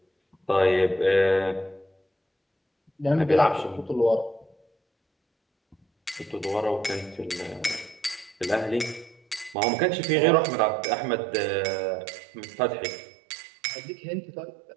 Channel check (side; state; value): left; drops out; at 9.6 s